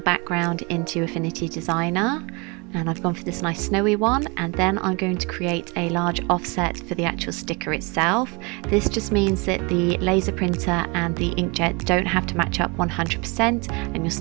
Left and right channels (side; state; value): left; quieter; 29.4 dB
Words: background into Affinity Designer, and I've gone for this nice snowy one, and then I'm going to create a large offset for the actual sticker itself. This just means that the laser printer and the inkjet don't have to match up 100% and you'll